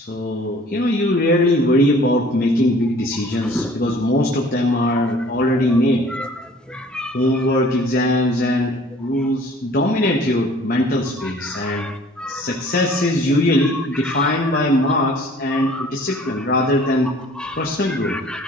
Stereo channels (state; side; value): normal; both; correlation 0.52